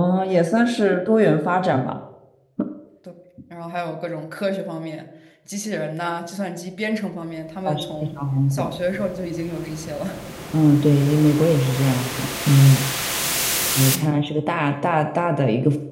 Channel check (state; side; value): identical; both; correlation 1.00